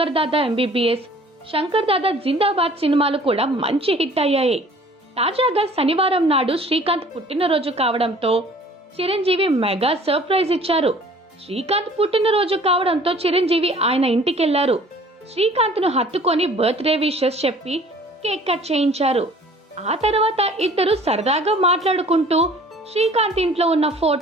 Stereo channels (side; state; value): both; normal; correlation 0.51